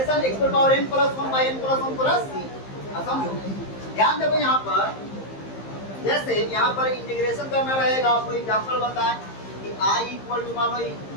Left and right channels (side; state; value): right; late; 15 ms